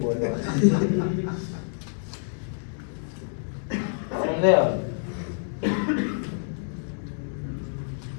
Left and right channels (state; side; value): silent; right; digital silence